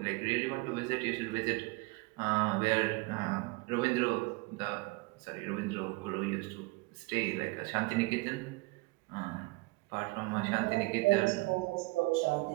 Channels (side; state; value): left; quieter; 24.7 dB